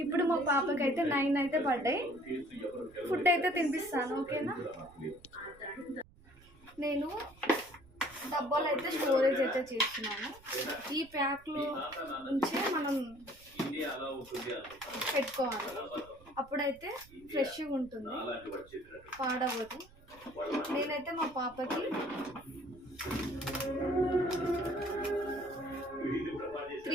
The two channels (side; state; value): right; noise; rumble, 24 dB below the sound